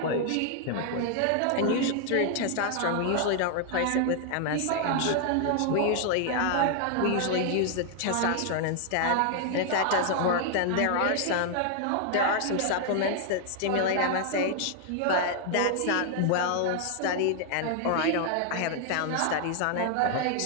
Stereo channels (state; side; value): different; both; correlation 0.00